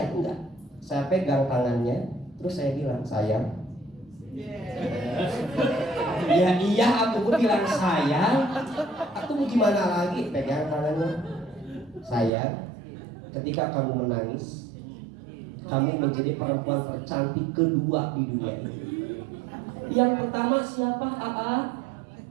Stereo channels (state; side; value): drops out; left; at 12.3 s